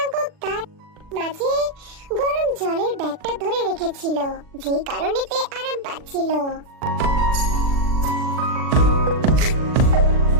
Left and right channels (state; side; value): late; left; 39 ms